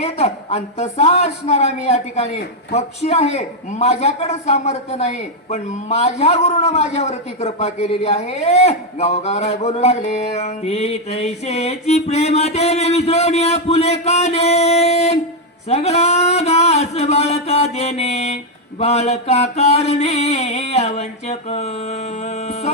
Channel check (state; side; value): normal; both; correlation 0.02